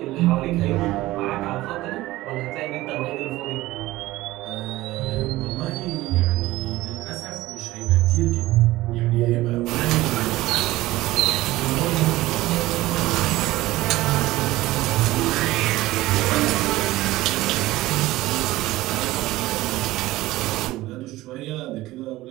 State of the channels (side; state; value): left; quieter; 17.5 dB